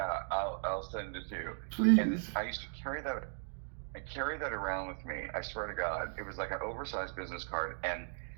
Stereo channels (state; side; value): silent; left; digital silence